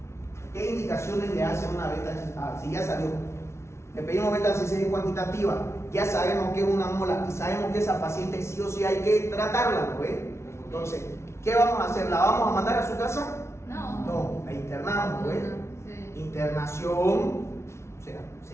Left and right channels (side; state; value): right; late; 0.13 ms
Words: ¿Qué indicaciones le hace una beta HCG? Si ya salió, le pedimos beta HCG cuantitativa, ya sabemos que es una mola y sabemos que esa paciente sí o sí hay que tratarla, ¿no ve? Entonces, ¿qué vamos a hacer? ¿La vamos a mandar a su casa? No, la internamos, ¿no ve? Sí. Internación, o sea, se